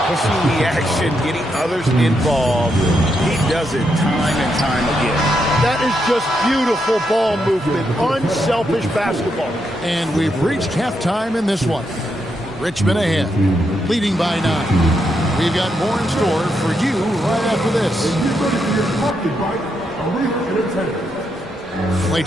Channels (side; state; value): both; normal; correlation 0.81